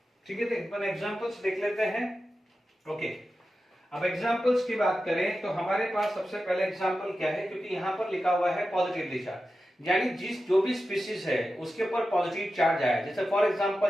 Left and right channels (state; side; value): normal; both; correlation 0.92